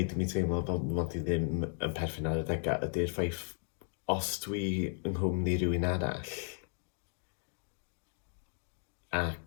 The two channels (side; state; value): right; silent; 54 dB below the other